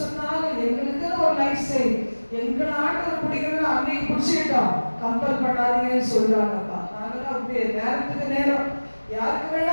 சொன்னாலும் எங்களுக்குன்னு ஒரு லைஃப் ஸ்டைல், எங்களை ஆண்டவர் பிடிக்கிறதுன்னு அன்னைக்கு பிடிச்சிக்கிட்டோம், கம்பல் பண்ணாதீங்கன்னு சொல்றாங்கப்பா. நாங்களாம் அப்படியே நேரத்துக்கு நேரம் யாருக்கு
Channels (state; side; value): inverted; both; correlation -1.00